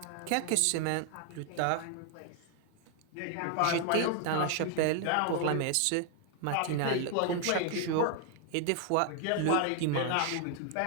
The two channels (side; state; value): both; different; correlation 0.00